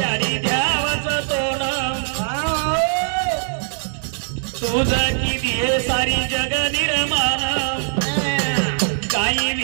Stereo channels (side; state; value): left; silent; digital silence